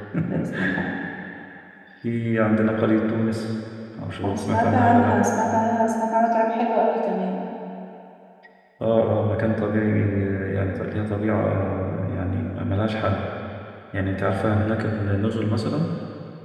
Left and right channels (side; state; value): both; identical; correlation 1.00